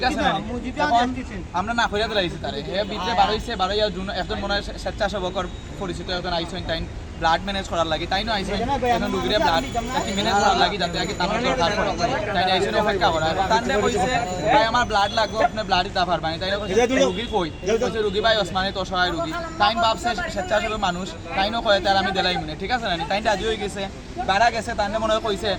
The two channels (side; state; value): both; identical; correlation 1.00